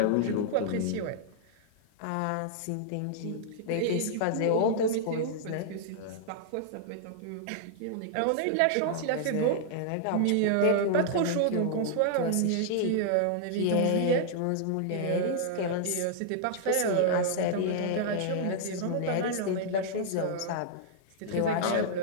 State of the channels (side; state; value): both; different; correlation -0.01